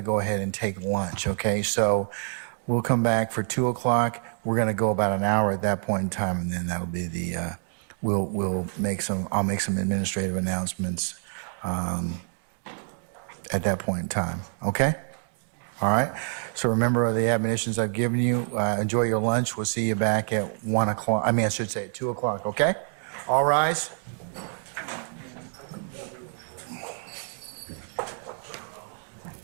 to go ahead and take lunch, okay? So we'll come back for 2 o'clock. We're going to go about an hour at that point in time, and then that'll be the, I'll make some administrative announcements at that point in time, okay? All right, so remember the admonitions I've given you. Enjoy your lunch. We'll see you back at 1 o'clock. I should say at 2 o'clock, okay? All rise.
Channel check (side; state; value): left; silent; 55 dB below the other